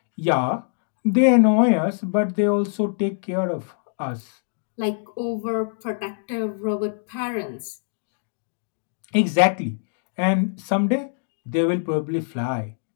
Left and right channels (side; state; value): right; silent; digital silence